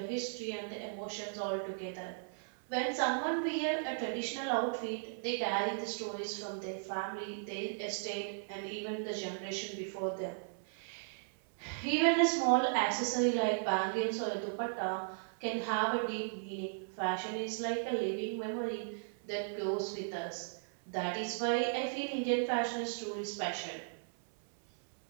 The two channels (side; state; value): left; silent; 54 dB below the other